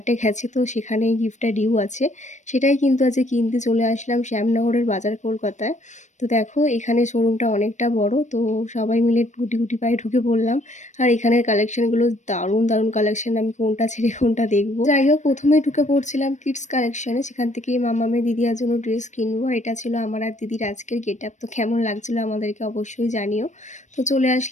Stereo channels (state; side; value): late; right; 0.35 ms